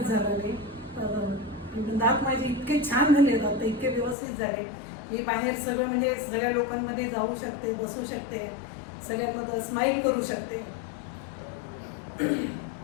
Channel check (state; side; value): drops out; right; at 4.2 s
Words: झाला नाही. दात माझे इतके छान झाले, दात इतके व्यवस्थित झाले, मी बाहेर सगळं म्हणजे सगळ्या लोकांमध्ये जाऊ शकते, बसू शकते, सगळ्यांमध्ये स्माईल करू शकते.